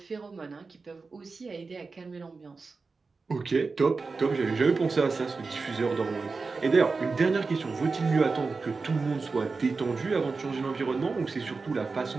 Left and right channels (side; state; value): left; quieter; 4.2 dB